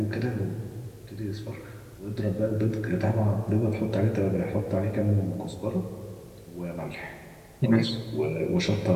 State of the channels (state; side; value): identical; both; correlation 1.00